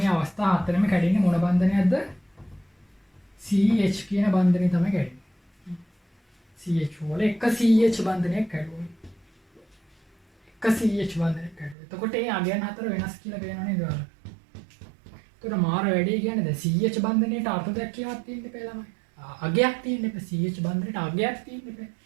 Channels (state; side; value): drops out; left; at 11.8 s